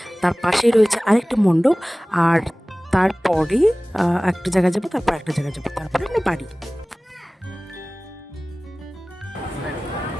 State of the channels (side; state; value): both; normal; correlation 0.98